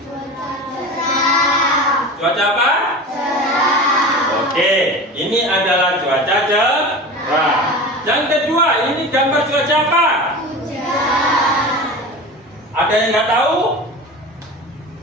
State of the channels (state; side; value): normal; both; correlation 0.32